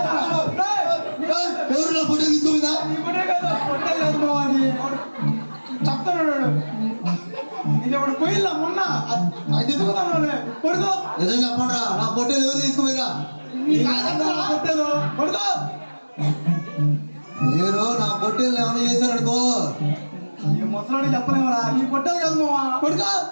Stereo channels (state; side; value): inverted; both; correlation -1.00